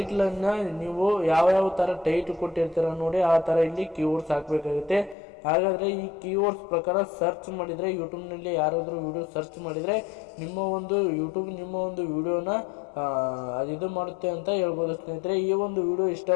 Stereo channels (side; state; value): right; drops out; at 5.2 s